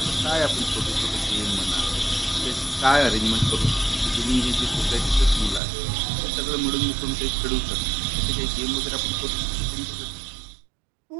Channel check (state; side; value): drops out; left; at 5.6 s